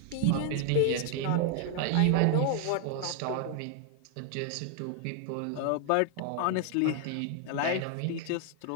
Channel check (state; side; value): different; both; correlation 0.00